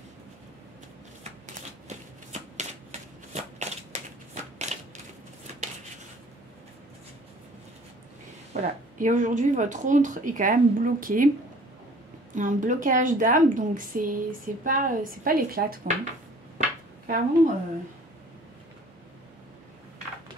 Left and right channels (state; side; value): normal; both; correlation 0.52